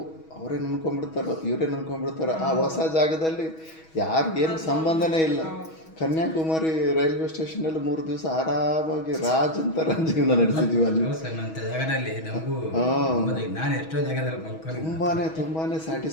ಅವರೇ ಅನ್ಕೊಂಡ್ಬಿಡ್ತಾರೋ ಇವರೇ ಅನ್ಕೊಂಡ್ಬಿಡ್ತಾರೋ. ಆ ಹೊಸ ಜಾಗದಲ್ಲಿ ಯಾರಿಗೇನು ಸಂಬಂಧನೇ ಇಲ್ಲ. ಕನ್ಯಾಕುಮಾರಿ ರೈಲ್ವೆ ಸ್ಟೇಷನಲ್ಲಿ 3 ದಿವಸ ಆರಾಮಾಗಿ ರಾಜ್ ಅಂತ ಜೀವನ ನಡೆಸಿದ್ವಿ ಅಲ್ಲಿ. ಜಾಗದಲ್ಲಿ ನಮಗೂ ನಾನು ಎಷ್ಟೋ ಜಾಗದಲ್ಲಿ ಮಲ್ಕೊಂಡು ತುಂಬಾ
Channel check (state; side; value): late; right; 6.2 ms